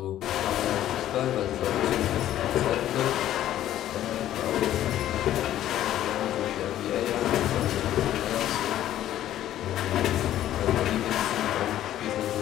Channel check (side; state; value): right; quieter; 12.5 dB